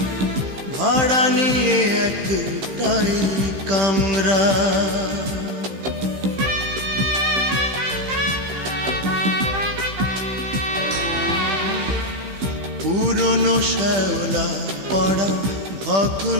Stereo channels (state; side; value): late; left; 15 ms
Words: ভাড়া নিয়ে একটাই কামরা। পুরনো শ্যাওলা পড়া